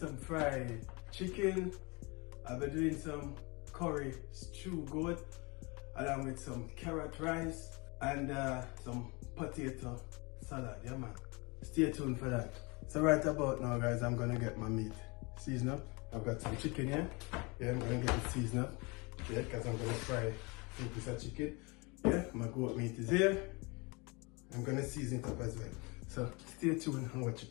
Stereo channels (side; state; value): right; quieter; 28.0 dB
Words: fried chicken, I'll be doing some curry stew goat, along with some carrot rice and some potato salad, yeah man. Stay tuned for that. So right about now, guys, I'm gonna get my meat seasoned up. I've got some chicken here. Yeah, I'm gonna get it seasoned up. Yeah, because I'm gonna fry a piece of chicken. Yeah, my goat meat is here. I'm gonna season it up as well. So stay tuned and watch